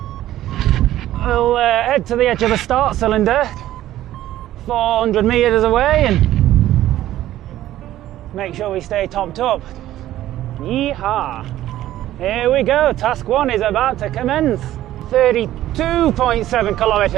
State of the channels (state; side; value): quieter; left; 13.8 dB